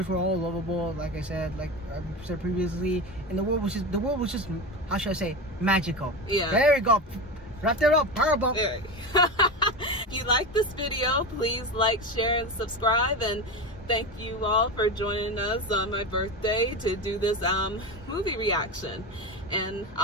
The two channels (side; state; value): both; normal; correlation 0.22